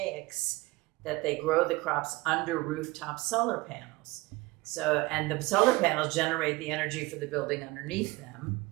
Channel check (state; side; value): quieter; left; 21.6 dB